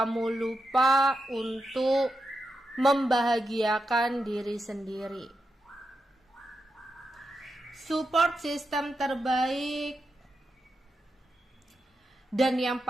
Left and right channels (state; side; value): normal; both; correlation 0.87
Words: lupa untuk membahagiakan diri sendiri. Support system terbaik dan yang